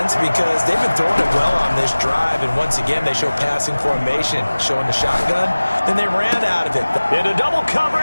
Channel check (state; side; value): inverted; both; correlation -1.00